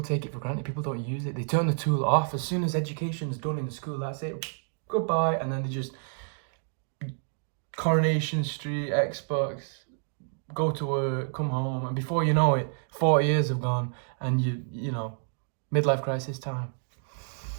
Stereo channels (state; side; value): silent; left; digital silence